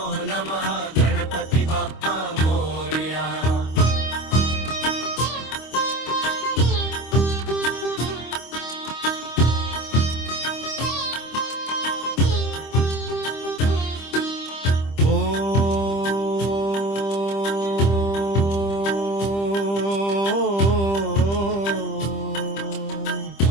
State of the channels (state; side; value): late; right; 25 ms